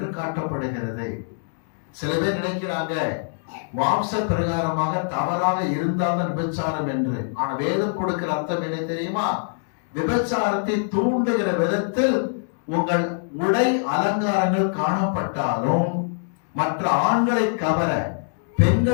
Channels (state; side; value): silent; right; digital silence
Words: காட்டப்படுகிறது. சில பேர் நினைக்கிறாங்க மாம்ச பிரகாரமாக தவறாக இருந்தால்தான் விபச்சாரம் என்று. ஆனா வேதம் கொடுக்கிற அர்த்தம் என்ன தெரியுமா? விபச்சாரத்தை தூண்டுகிற விதத்தில் உங்கள் உடை அலங்காரங்கள் காணப்பட்டாலும் மற்ற ஆண்களை கவர